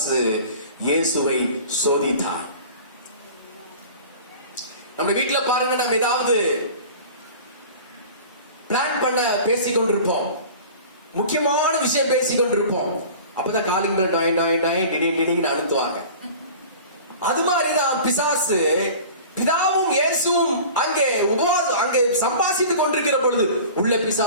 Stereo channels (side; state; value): both; inverted; correlation -0.40